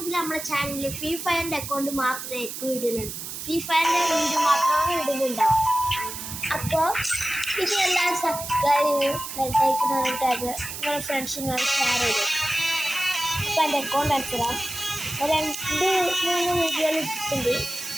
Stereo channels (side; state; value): right; noise; hiss, 8 dB below the sound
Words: നമ്മുടെ ചാനലിൽ ഫ്രീ ഫയറിൻ്റെ അക്കൗണ്ട് മാത്രമേ ഇടുന്നുള്ളൂ. ഫ്രീ ഫയറിൻ്റെ വീഡിയോ മാത്രമാണ് ഇടുന്നുണ്ടാവും. അപ്പോൾ ഇത് എല്ലാവരും സബ്സ്ക്രൈബ് ചെയ്യും, ബെൽറ്റൈക്കൺ ടാബ് നിങ്ങളുടെ ഫ്രണ്ട്സിനോട് ഷെയർ ചെയ്തു. അപ്പോൾ എൻ്റെ അക്കൗണ്ട് അടിച്ചിടാം. 2-3 വീഡിയോകൾ ഇട്ടിട്ടുണ്ട്.